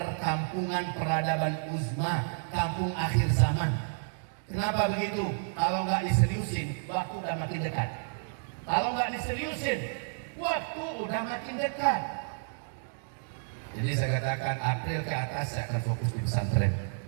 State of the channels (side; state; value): left; silent; digital silence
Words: peradaban uzma, kampung akhir zaman. Kenapa begitu? Kalau nggak diseriusin, waktu udah makin dekat. Kalau nggak diseriusin, waktu udah makin dekat. Jadi saya katakan April ke atas saya akan fokus di pesantren.